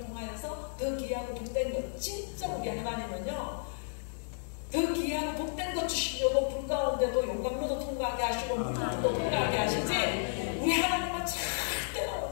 더 귀하고 복된 것, 진짜 우리 하나님은요, 더 귀하고 복된 것 주시려고 불 가운데도 용광로도 통과하게 하시고 물도 통과하게 하시지, 우리 하나님은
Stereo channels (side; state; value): right; silent; 56 dB below the other